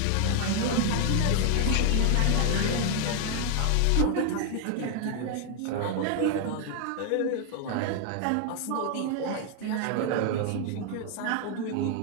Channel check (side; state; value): both; different; correlation 0.00